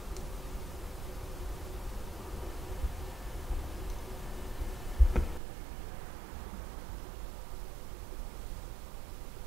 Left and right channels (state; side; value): drops out; left; at 5.4 s